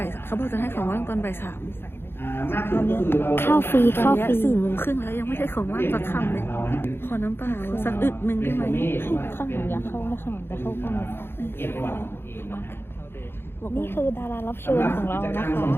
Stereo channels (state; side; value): late; right; 0.11 ms